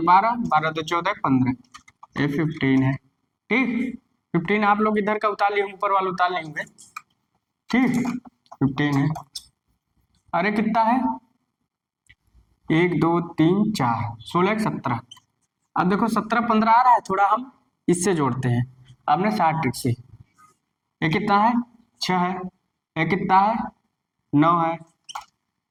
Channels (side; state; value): both; identical; correlation 1.00